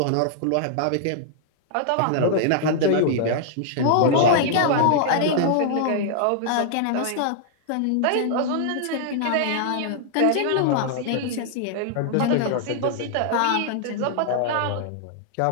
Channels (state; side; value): different; both; correlation -0.01